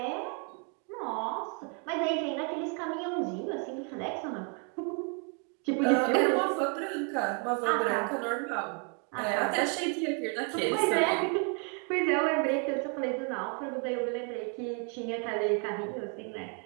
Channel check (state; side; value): quieter; left; 38.9 dB